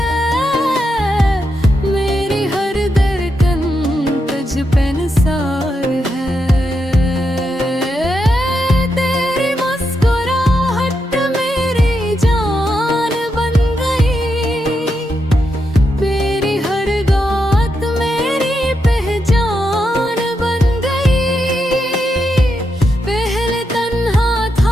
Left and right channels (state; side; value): normal; both; correlation 0.84